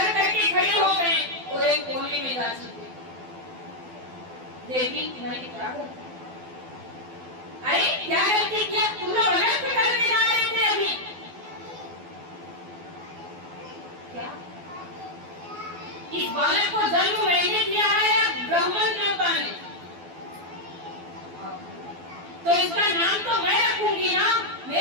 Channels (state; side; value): late; left; 12 ms